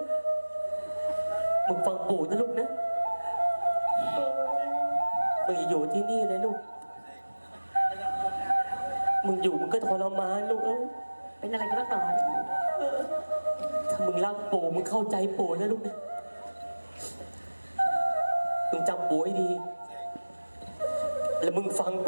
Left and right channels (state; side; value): inverted; both; correlation -1.00